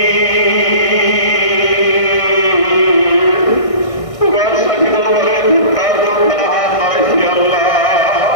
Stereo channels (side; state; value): right; late; 1.6 ms